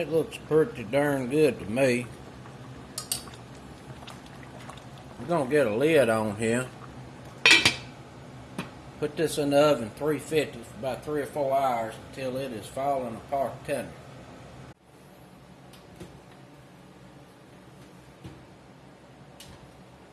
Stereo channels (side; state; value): both; identical; correlation 1.00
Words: looks pretty darn good to me. We're going to get a lid on here. Put this in the oven 350 for about 3 or 4 hours until it is falling apart tender.